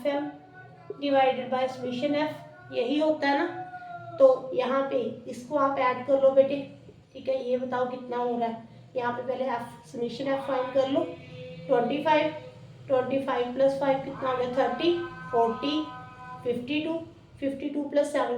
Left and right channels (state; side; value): identical; both; correlation 1.00